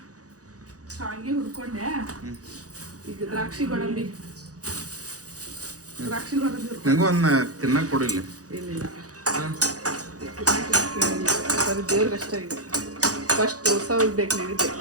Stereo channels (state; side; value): late; left; 0.67 ms